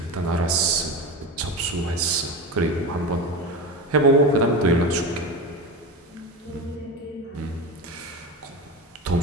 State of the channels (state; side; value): normal; both; correlation 0.23